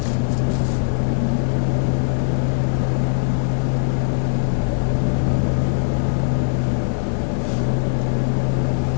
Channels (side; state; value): right; silent; 66 dB below the other